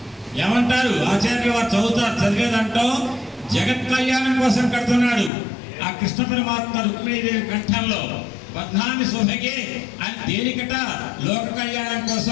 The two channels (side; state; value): right; drops out; at 5.3 s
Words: ఏమంటారు ఆచార్యులు వారు చదివేదంటో జగత్ కళ్యాణం కోసం కడుతున్నాడు. ఆ కృష్ణ పరమాత్మ రుక్మిణీదేవి కంఠంలో బద్ధాన్ని శోభగే అని దేనికట? లోక కళ్యాణం